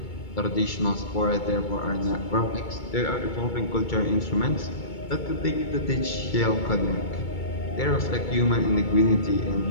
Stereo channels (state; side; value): late; right; 2.2 ms